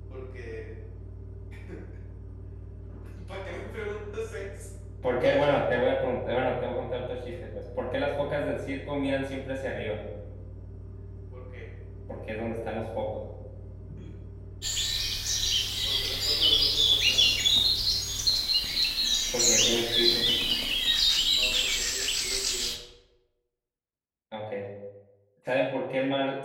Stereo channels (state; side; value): identical; both; correlation 1.00